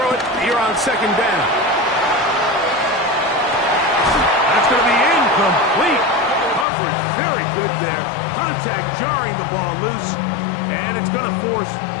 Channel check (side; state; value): right; drops out; at 6.7 s